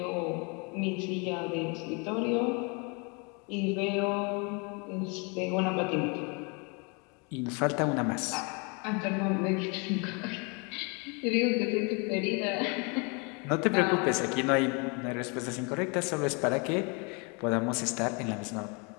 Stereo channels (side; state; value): right; quieter; 32.4 dB